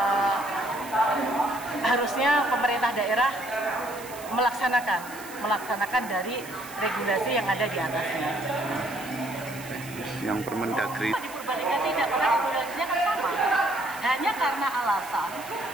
harusnya pemerintah daerah melaksanakan dari regulasi yang ada di atasnya. Yang Permendagri Di Purbalingga tidak, karena regulasinya kan sama. Hanya karena alasan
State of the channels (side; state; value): right; noise; hiss, 16 dB below the sound